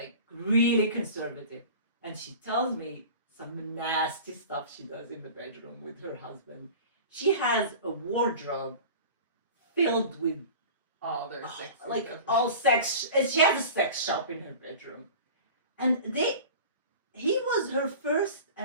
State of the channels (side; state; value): both; inverted; correlation -0.38